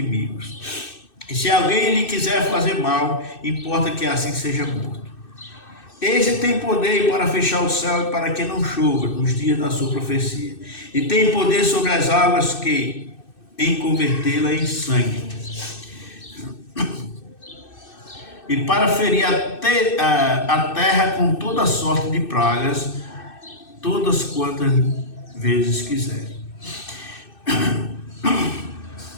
E se alguém lhe quiser fazer mal, importa que assim seja morto. Este tem poder para fechar o céu e para que não chova nos dias da sua profecia. E tem poder sobre as águas em convertê-la em sangue. E para ferir a terra com toda sorte de pragas, todas quantas vezes quiserem.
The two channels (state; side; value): late; right; 2.6 ms